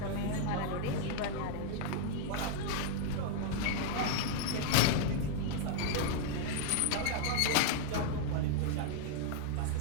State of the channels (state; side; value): different; both; correlation 0.00